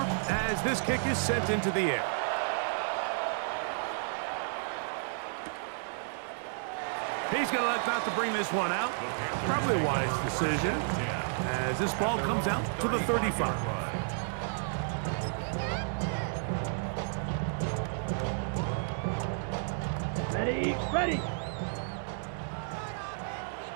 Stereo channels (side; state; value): left; silent; digital silence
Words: as this kick is sent into the air. He's going to elect not to bring this one out. Probably a wise decision as this ball comes out to the 35. Ready, ready.